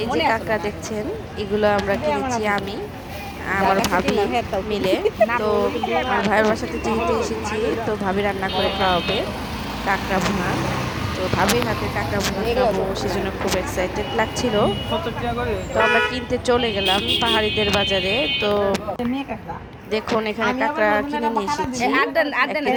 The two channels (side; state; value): both; identical; correlation 1.00